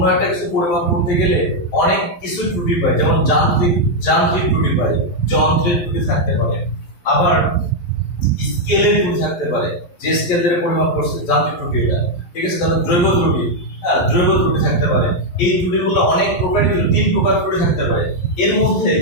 একটা কিছু পরিমাপ করতে গেলে অনেক কিছু ত্রুটি পাই, যেমন যান্ত্রিক ত্রুটি পাই, যন্ত্রের ত্রুটি থাকতে পারে, আবার স্কেলের ত্রুটি থাকতে পারে, যে স্কেল দিয়ে পরিমাপ করছে যান্ত্রিক ত্রুটি এটা। ঠিক আছে, তাহলে জৈব ত্রুটি, হ্যাঁ, জৈব ত্রুটি থাকতে পারে। এই ত্রুটিগুলো অনেক প্রকারই, 3 প্রকার ত্রুটি থাকতে পারে। এর মধ্যে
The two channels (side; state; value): right; late; 11 ms